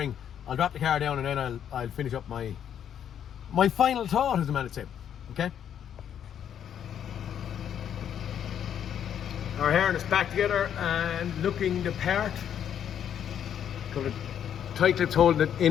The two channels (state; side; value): quieter; right; 9.2 dB